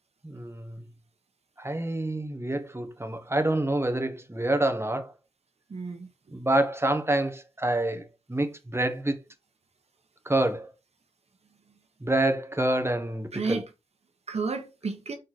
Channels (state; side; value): normal; both; correlation 0.81